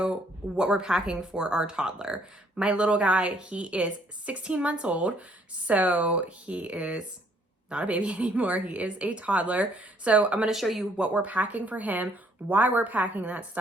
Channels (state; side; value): normal; both; correlation 0.65